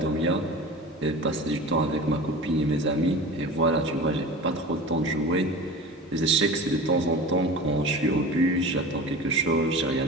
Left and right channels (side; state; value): both; normal; correlation 0.33